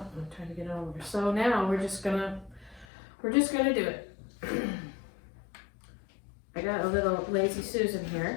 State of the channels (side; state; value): right; drops out; at 2.9 s